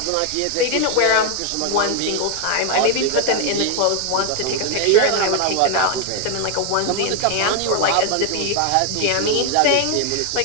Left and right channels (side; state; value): both; different; correlation 0.00